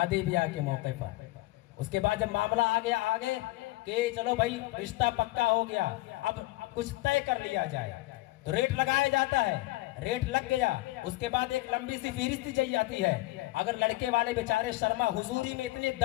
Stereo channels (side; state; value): right; quieter; 19.3 dB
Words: ब्याह के मौके पर। उसके बाद जब मामला आ गया आगे कि चलो भाई रिश्ता पक्का हो गया, अब कुछ तय कर लिया जाए, तो रेट लगाया जाता है। रेट लग गया, उसके बाद एक लंबी सी फहरिस्त दी जाती है। अगर लड़के वाले बेचारे शर्मा हुजूरी में इतने